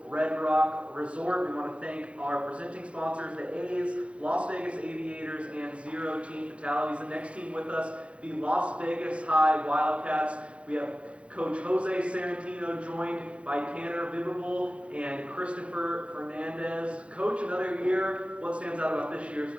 Red Rock Resort. We want to thank our presenting sponsors, the A's, Las Vegas Aviators, and Zero Teen Fatalities. The next team with us, the Las Vegas High Wildcats. We have Coach Jose Sarantino joined by Tanner Bibable and Christopher Fernandez. Coach, another year. What stands out about this year's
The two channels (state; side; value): late; left; 0.061 ms